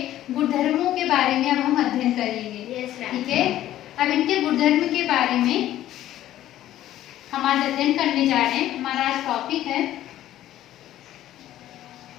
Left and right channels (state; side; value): quieter; right; 13.2 dB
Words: गुणधर्मों के बारे में अब हम अध्ययन करेंगे। Yes ma'am. ठीक है, अब इनके गुणधर्म के बारे में हम आज अध्ययन करने जा रहे हैं। हमारा आज टॉपिक है